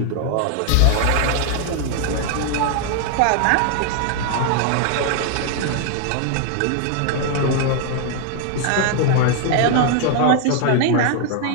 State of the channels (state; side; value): different; both; correlation 0.00